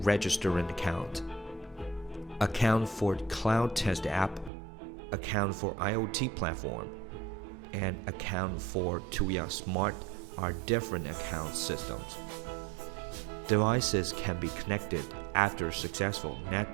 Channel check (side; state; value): left; drops out; at 4.5 s